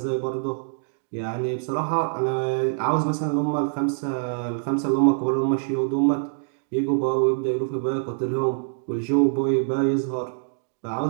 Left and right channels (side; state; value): left; silent; digital silence